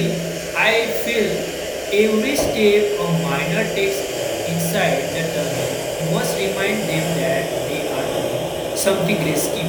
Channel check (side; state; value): both; identical; correlation 1.00